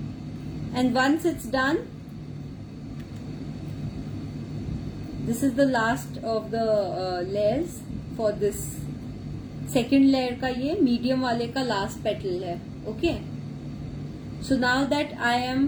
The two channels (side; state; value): both; identical; correlation 1.00